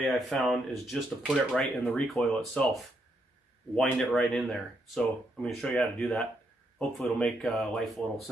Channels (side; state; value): both; normal; correlation 0.77